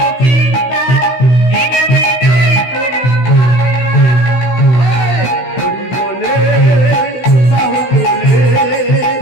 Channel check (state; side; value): late; right; 16 ms